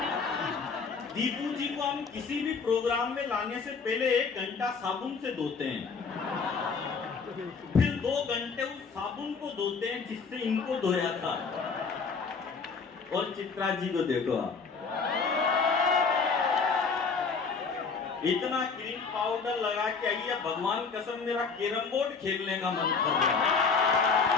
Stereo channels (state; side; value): quieter; right; 5.1 dB